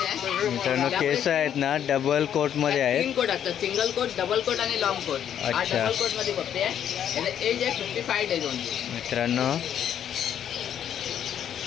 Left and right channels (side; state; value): right; quieter; 9.6 dB